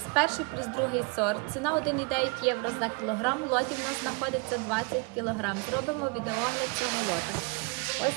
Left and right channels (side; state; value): left; quieter; 30.7 dB